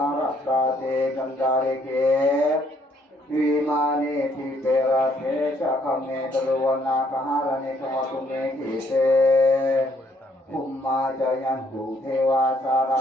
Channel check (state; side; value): normal; both; correlation 0.67